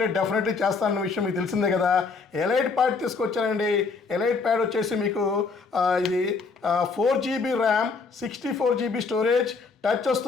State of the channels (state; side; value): quieter; right; 4.6 dB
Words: డెఫినెట్లీ చేస్తానన్న విషయం మీకు తెలిసిందే కదా. ఎలైట్ ప్యాడ్ తీసుకొచ్చానండి. ఎలైట్ ప్యాడ్ వచ్చేసి మీకు ఇది 4GB RAM, 64GB storage, touch